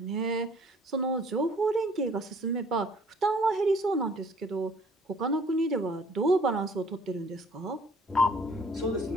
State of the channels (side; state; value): both; normal; correlation 0.56